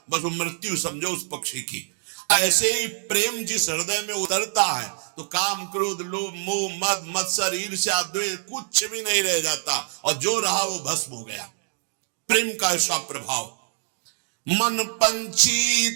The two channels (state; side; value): silent; left; digital silence